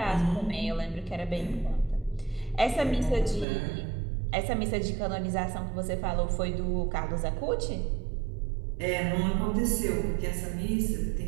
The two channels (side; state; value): left; drops out; at 3.5 s